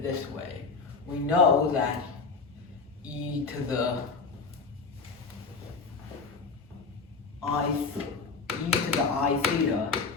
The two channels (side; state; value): right; quieter; 4.4 dB